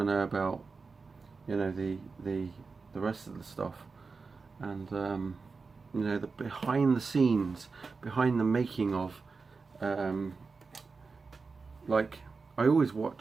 know about, you know, the rest of the stuff, and you know, the behind the scenes, behind the making of. Like, I always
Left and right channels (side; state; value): left; quieter; 4.5 dB